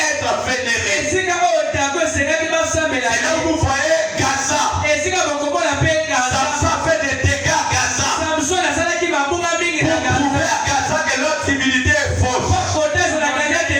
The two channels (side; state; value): both; identical; correlation 1.00